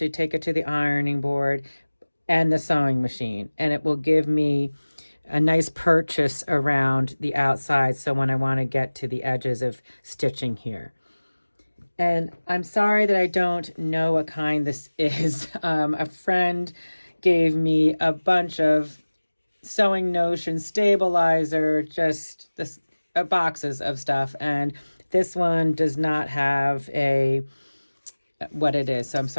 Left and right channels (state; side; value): inverted; both; correlation -1.00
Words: take it to the ironing board and the sewing machine. And it will give me a nice purchase around the outside, so when I want to get to the edges of stitching here. And I'm sorry that I don't know what kind this is. A friend gave me a bunch of Sewing Notion stabilizer, just boxes of stuff, and this one does not have what it is, so I'm